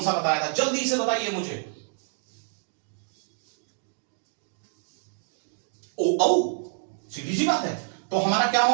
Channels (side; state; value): left; silent; 60 dB below the other